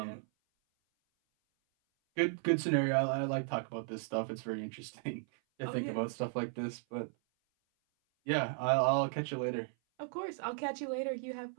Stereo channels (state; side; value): silent; left; 54 dB below the other